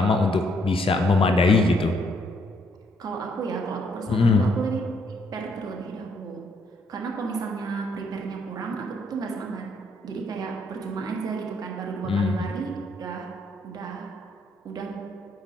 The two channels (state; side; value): normal; both; correlation 0.70